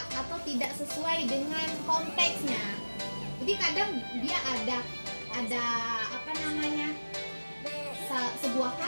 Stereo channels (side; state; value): both; inverted; correlation -1.00